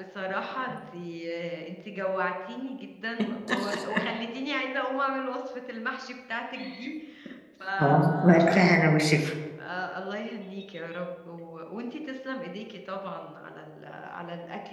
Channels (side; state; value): both; identical; correlation 1.00